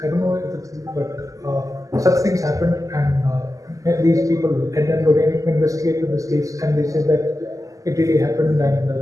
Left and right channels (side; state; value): left; late; 0.16 ms